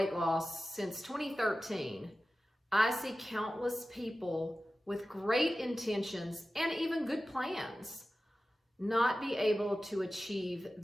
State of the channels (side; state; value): both; normal; correlation 0.95